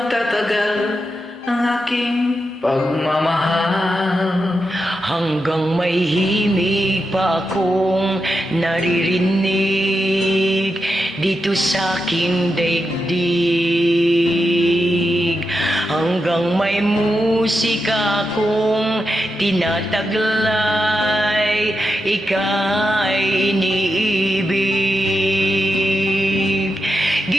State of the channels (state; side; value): normal; both; correlation 0.87